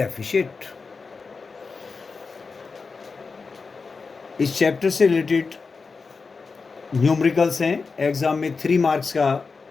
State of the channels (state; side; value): quieter; right; 4.6 dB